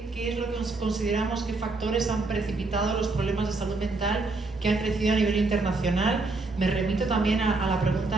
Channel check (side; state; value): left; quieter; 3.4 dB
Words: es lo que consideramos, qué factores han precipitado los problemas de salud mental que han crecido a nivel internacional. Me remito también a la